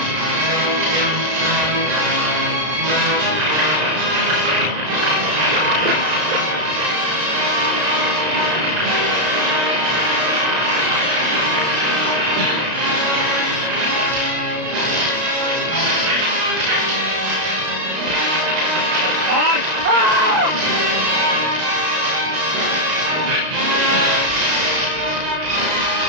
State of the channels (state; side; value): late; left; 1.9 ms